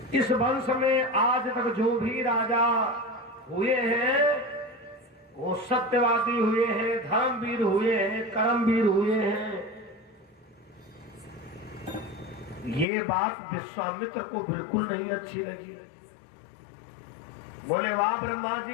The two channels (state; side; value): drops out; right; at 12.9 s